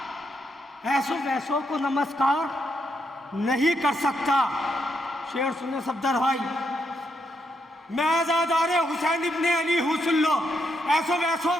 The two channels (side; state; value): both; normal; correlation 0.79